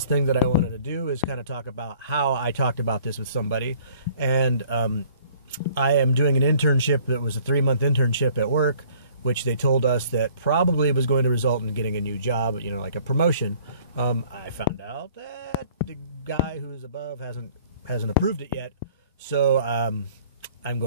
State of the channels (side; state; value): both; inverted; correlation -0.56